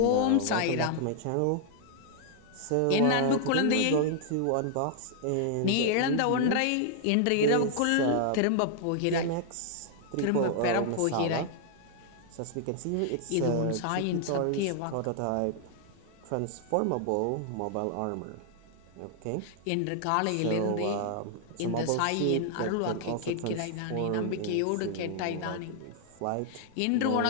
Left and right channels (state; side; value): different; both; correlation -0.01